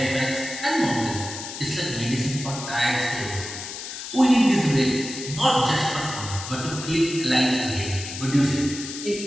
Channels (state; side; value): noise; left; hiss, 9 dB below the sound